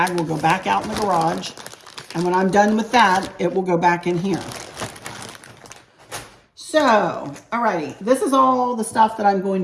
will go back out in the garage. And when I'm done with that, it will go back in here. So, alrighty, this is all the stuff that I'm going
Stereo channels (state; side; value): identical; both; correlation 1.00